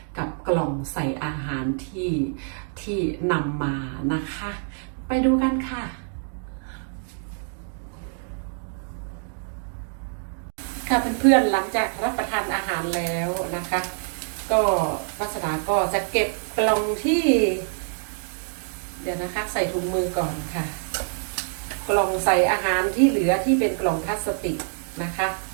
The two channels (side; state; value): left; silent; 60 dB below the other